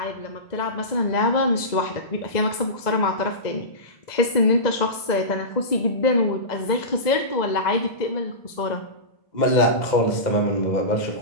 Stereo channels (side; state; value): right; late; 2.0 ms